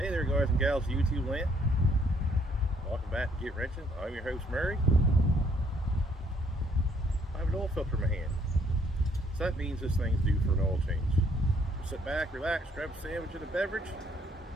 Hey there, guys and gals of YouTube land. Welcome back to Get Wrenching. I'm your host, Murray. I have an oil filter in my hand. So that means this thing's due for an oil change. So sit back, relax, grab a sandwich and a beverage,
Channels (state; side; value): normal; both; correlation 0.66